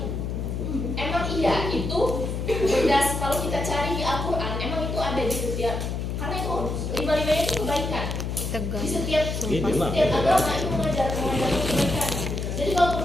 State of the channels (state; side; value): noise; left; hum, 3 dB below the sound